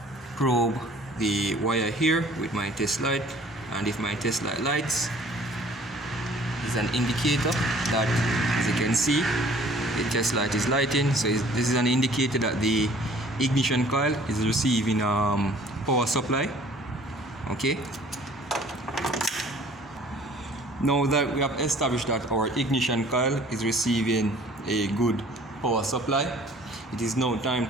probe the wire here with my test light, and if my test light lights, it's an indicator that, as you can see, the test light is lighting. So this is an indicator that the ignition coil is receiving power supply. Okay, now that we have established that our ignition coil is receiving a good power supply, it is now time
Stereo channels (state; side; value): normal; both; correlation 0.53